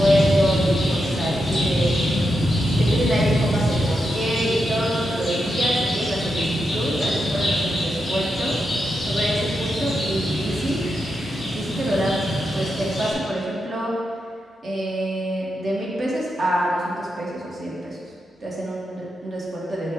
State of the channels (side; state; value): both; normal; correlation 0.86